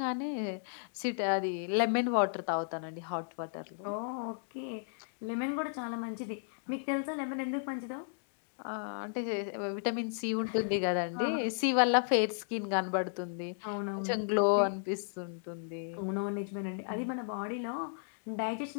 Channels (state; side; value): silent; right; digital silence